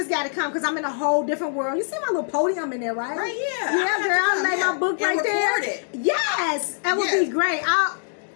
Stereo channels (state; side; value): silent; right; digital silence